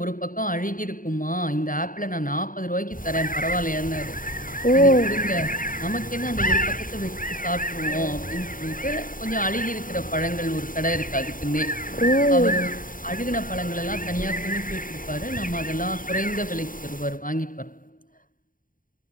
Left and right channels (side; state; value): right; late; 0.40 ms